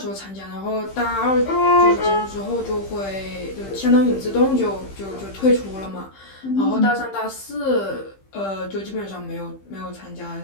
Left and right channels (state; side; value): late; right; 15 ms